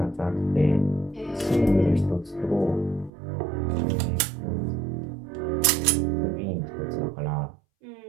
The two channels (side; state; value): left; drops out; at 3.1 s